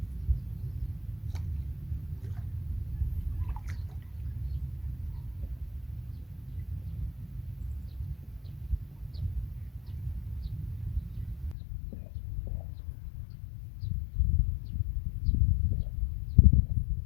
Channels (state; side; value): drops out; right; at 11.6 s